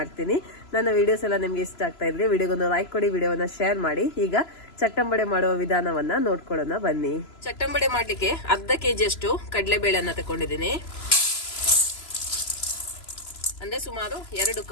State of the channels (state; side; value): late; right; 3.0 ms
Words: ನನ್ನ ವಿಡಿಯೋಸ್ ಎಲ್ಲ ನಿಮ್ಗೆ ಇಷ್ಟ ಆಗ್ತಾ ಇದ್ರೆ ವಿಡಿಯೋಗೊಂದು ಲೈಕ್ ಕೊಡಿ, ವಿಡಿಯೋನ ಶೇರ್ ಮಾಡಿ. ಈಗ ಚಟ್ಟಂಬಡೆ ಮಾಡುವ ವಿಧಾನವನ್ನ ನೋಡ್ಕೊಳ್ಳೋಣ ಬನ್ನಿ. ಚಟ್ಟಂಬಡೆ ಮಾಡ್ಲಿಕ್ಕೆ ಅರ್ಧ ಕೆಜಿ ಅಷ್ಟು ಕಡಲೆಬೇಳೆಯನ್ನ ತಗೊಂಡಿದ್ದೀನಿ. ಅಂದ್ರೆ ಸುಮಾರು 2